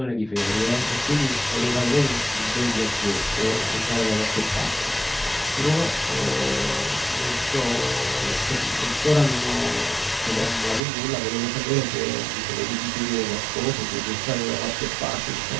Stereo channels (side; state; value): left; drops out; at 10.8 s